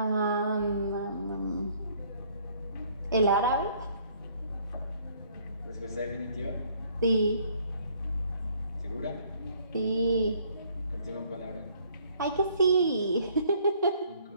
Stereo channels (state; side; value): inverted; both; correlation -0.62